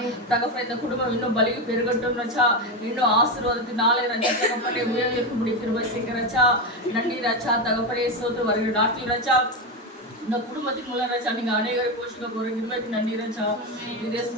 தகப்பனே இந்த குடும்பம் இன்னும் பலி பெருகட்டும் ரச்சா இன்னும் ஆசீர்வாதத்தினாலே ரச்சா தகப்பனே உயர்ந்திருக்கும்படி கிருபை செய்யுங்க ரச்சா நன்றி ரச்சா தகப்பனே சோத்து வருகிற நாட்டில் ரச்சா இந்த குடும்பத்தின் மூலம் ரச்சா நீங்க அநேகரை போஷிக்க போற கிருபைக்கு நன்றி ரச்சா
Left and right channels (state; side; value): normal; both; correlation 0.13